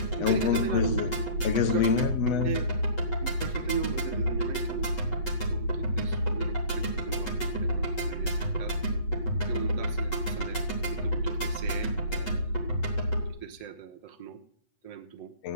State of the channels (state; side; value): late; right; 8.1 ms